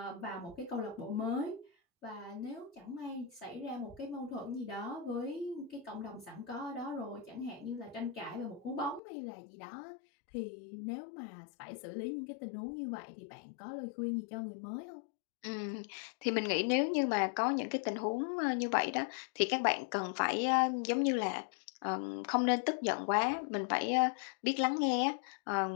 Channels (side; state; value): right; drops out; at 9.0 s